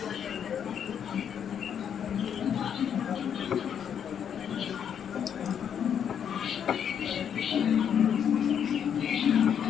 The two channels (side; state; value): right; quieter; 8.4 dB